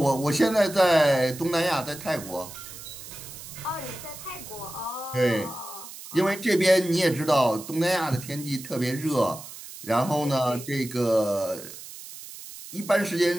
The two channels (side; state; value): right; noise; hiss, 14 dB below the sound